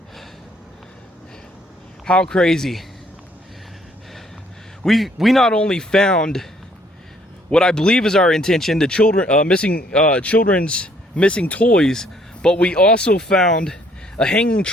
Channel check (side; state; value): both; normal; correlation 0.64